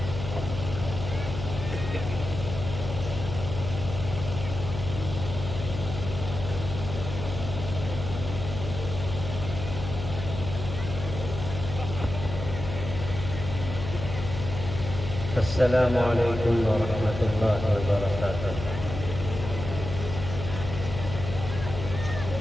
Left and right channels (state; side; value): noise; left; hum, 7 dB below the sound